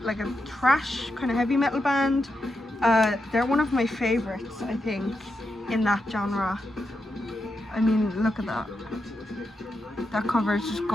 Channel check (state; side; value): normal; both; correlation 0.86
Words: like a thrash kind of heavy metal band. They're one of my favorites, I think, in that genre. I mean, look at that. That cover is just